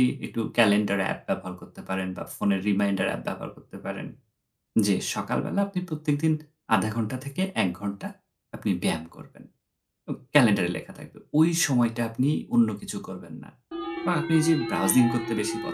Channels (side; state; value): both; identical; correlation 1.00